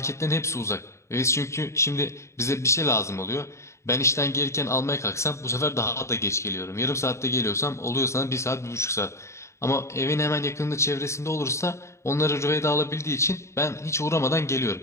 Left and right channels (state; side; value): late; right; 0.14 ms